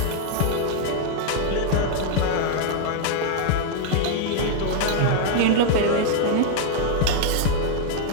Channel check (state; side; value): different; both; correlation -0.01